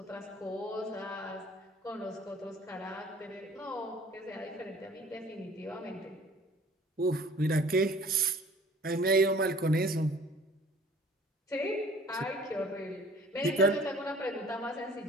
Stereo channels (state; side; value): normal; both; correlation 0.51